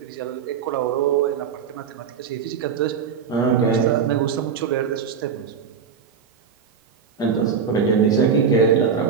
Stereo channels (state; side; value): quieter; left; 6.6 dB